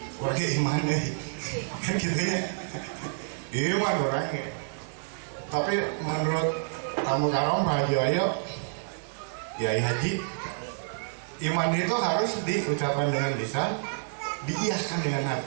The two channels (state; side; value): silent; left; digital silence